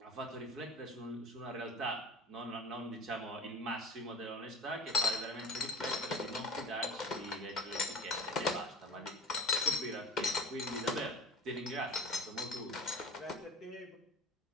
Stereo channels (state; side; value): normal; both; correlation 0.35